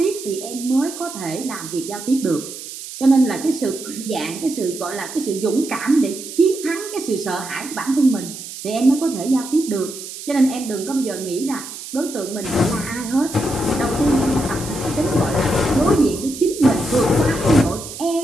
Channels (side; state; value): right; noise; hiss, 11 dB below the sound